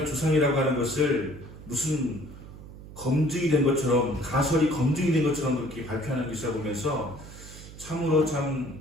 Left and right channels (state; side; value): noise; right; hum, 15 dB below the sound